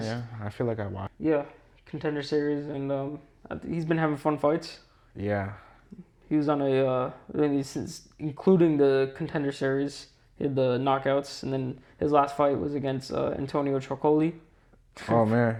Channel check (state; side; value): identical; both; correlation 1.00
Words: Yeah, I feel like I watched. Yeah, Contender series, and he's been having fun fights. Yeah. He was on including the Contender series, he had the knockouts, and then his last fight was against Antonio Trocoli. Oh man,